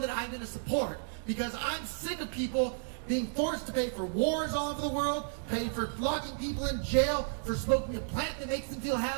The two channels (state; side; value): silent; left; digital silence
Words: that I'm going to support, because I'm sick of people being forced to pay for wars all over the world, paying for locking people in jail for smoking a plant that makes them feel